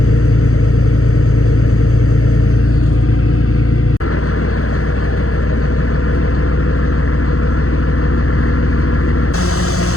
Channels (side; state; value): right; late; 0.64 ms